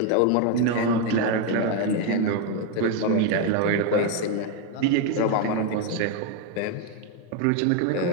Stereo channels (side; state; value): both; different; correlation 0.01